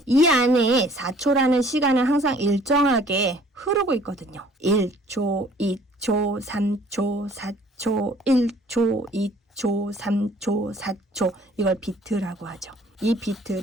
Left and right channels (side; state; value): both; normal; correlation 0.55